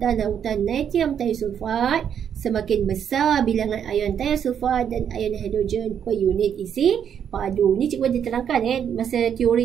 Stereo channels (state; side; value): quieter; left; 8.5 dB